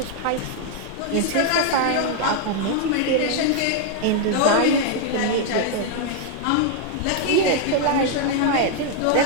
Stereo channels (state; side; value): different; both; correlation 0.00